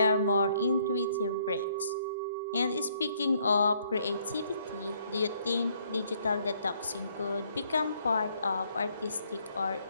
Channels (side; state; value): both; inverted; correlation -0.67